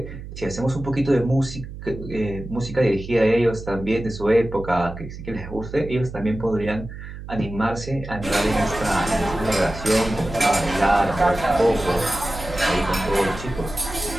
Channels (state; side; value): noise; right; hum, 11 dB below the sound